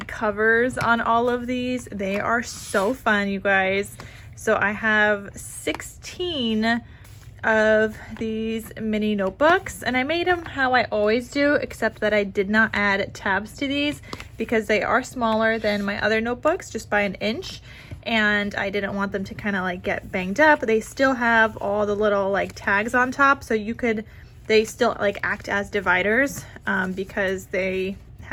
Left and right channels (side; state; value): both; identical; correlation 1.00